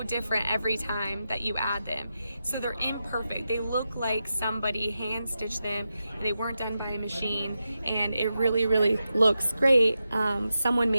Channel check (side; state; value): both; inverted; correlation -0.89